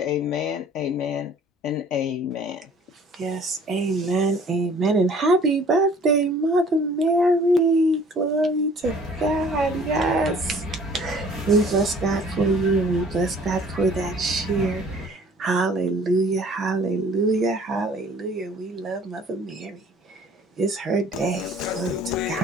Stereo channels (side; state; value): both; normal; correlation 0.53